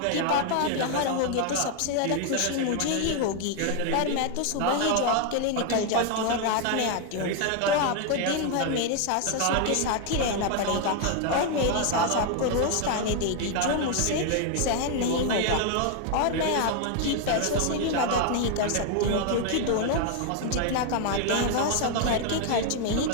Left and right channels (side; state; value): both; different; correlation 0.01